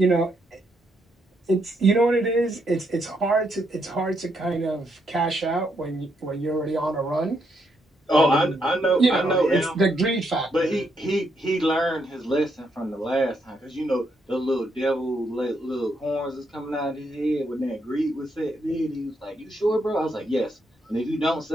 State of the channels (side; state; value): both; normal; correlation 0.77